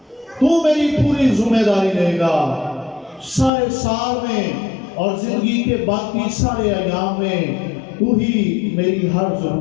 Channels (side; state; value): right; drops out; at 3.5 s